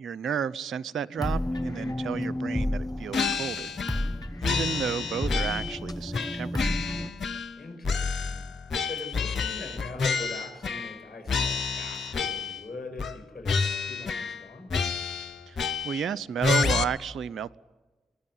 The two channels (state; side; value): normal; both; correlation 0.74